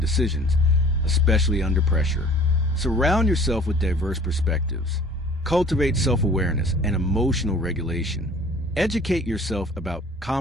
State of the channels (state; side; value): normal; both; correlation 0.49